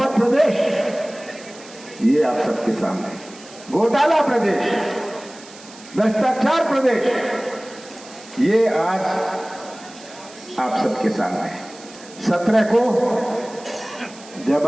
प्रदेश। ये आप सबके सामने घोटाला प्रदेश, भ्रष्टाचार प्रदेश, ये आज आप सबके सामने है। 17 को जब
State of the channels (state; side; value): noise; right; hiss, 20 dB below the sound